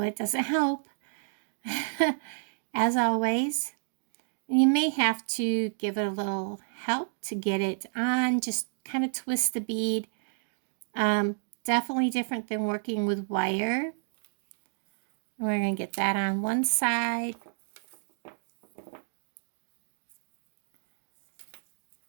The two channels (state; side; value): silent; left; digital silence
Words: doesn't help. As always. And you may have to give it a little help to get it on. Just kind of twist the bead. Definitely different than working with wire. And we're going to get that on one side.